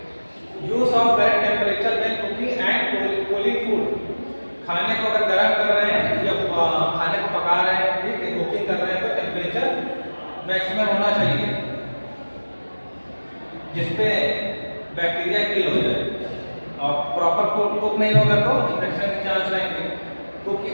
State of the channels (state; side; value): inverted; both; correlation -1.00